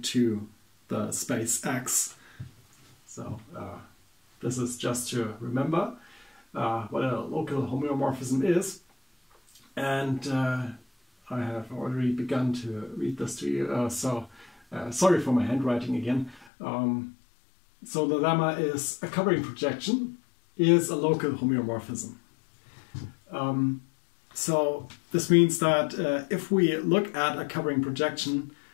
to the space X. So this is just to remember what a local homeomorphism is. And I have already begun to read this to you, so sorry for my handwriting again. So the lemma is a covering projection is a local homeomorphism. So this means that if we look at a covering projection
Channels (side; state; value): right; drops out; at 16.4 s